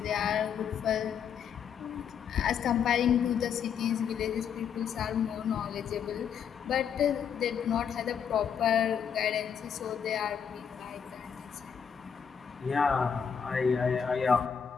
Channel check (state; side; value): quieter; right; 7.5 dB